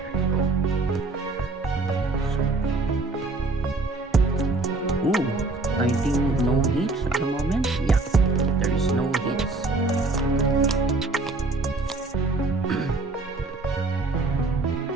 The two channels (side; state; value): left; quieter; 3.4 dB